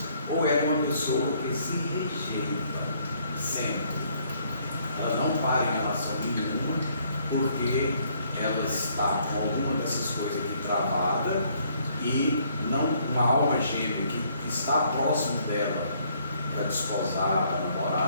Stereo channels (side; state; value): both; inverted; correlation -0.66